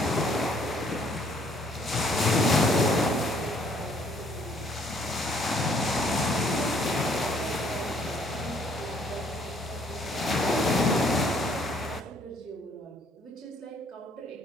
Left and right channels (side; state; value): both; normal; correlation 0.63